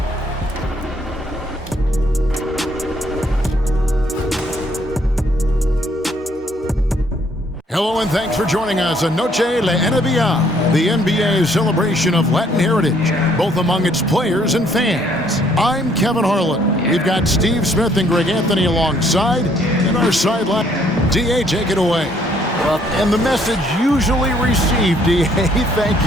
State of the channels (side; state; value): both; normal; correlation 0.65